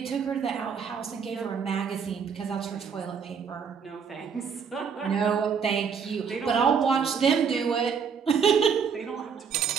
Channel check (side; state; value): left; quieter; 6.5 dB